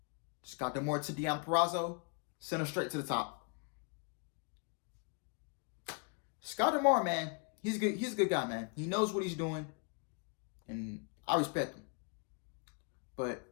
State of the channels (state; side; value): quieter; right; 35.6 dB